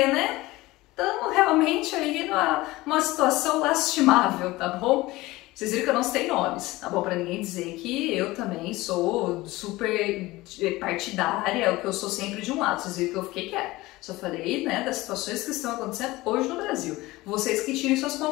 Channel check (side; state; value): right; quieter; 19.5 dB